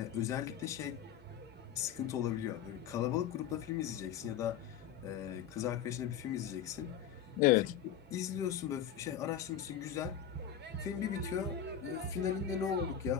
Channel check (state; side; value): quieter; right; 9.2 dB